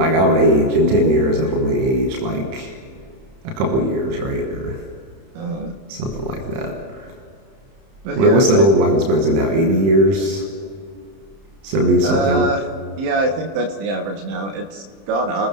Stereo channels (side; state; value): left; late; 31 ms